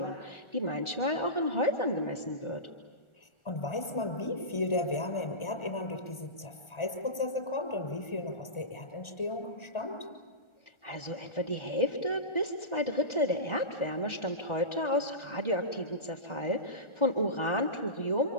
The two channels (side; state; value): right; late; 1.4 ms